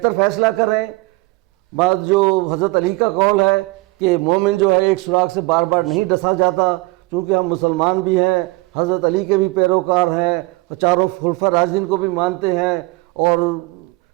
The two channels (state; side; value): quieter; left; 23.3 dB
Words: فیصلہ کریں. بعد جو حضرت علی کا قول ہے کہ مومن جو ہے ایک سراغ سے بار بار نہیں ڈسا جاتا, چونکہ ہم مسلمان بھی ہیں, حضرت علی کے بھی پیروکار ہیں, چاروں خلفاء راشدین کو بھی مانتے ہیں, اور